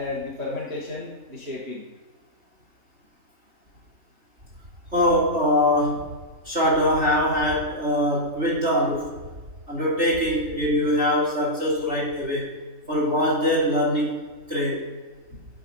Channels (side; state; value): left; late; 3.3 ms